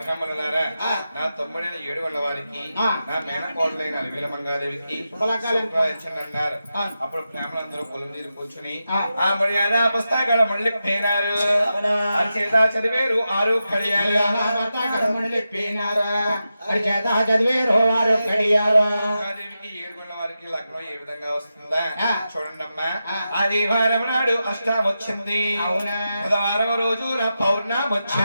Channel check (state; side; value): inverted; both; correlation -0.90